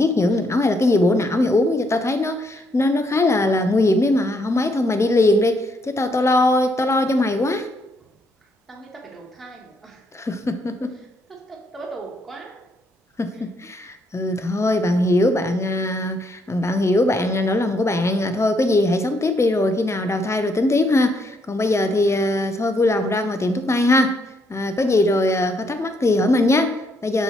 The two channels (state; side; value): normal; both; correlation 0.73